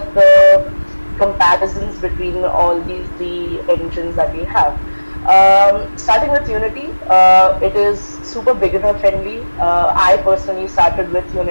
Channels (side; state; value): both; inverted; correlation -1.00